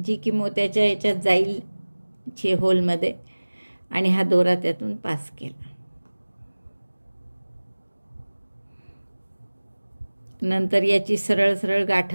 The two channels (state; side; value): inverted; both; correlation -1.00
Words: की मोत्याच्या ह्याच्यात जाईल होलमध्ये, आणि हा दोरा त्यातून पास केला. नंतर याची सरळ सरळ